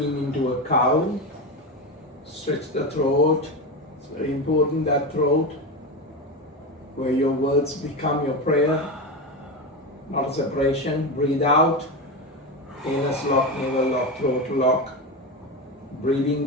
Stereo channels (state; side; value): normal; both; correlation 0.18